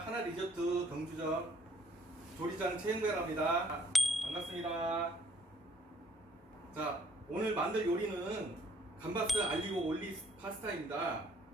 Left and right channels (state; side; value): normal; both; correlation 0.63